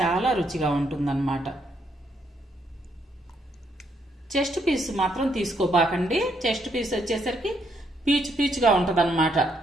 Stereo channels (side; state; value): both; normal; correlation 0.74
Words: రుచిగా ఉంటుందన్నమాట. చెస్ట్ పీస్ మాత్రం తీసుకోబాకండి. చెస్ట్ పీస్ వచ్చేసరికి పీచు పీచుగా ఉంటదన్నమాట.